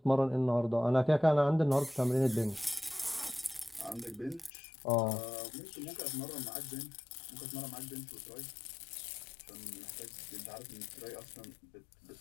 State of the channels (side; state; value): right; drops out; at 4.5 s